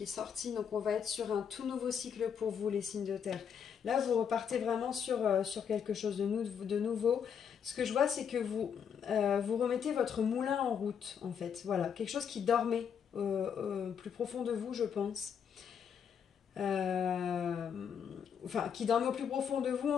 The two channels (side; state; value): right; quieter; 7.6 dB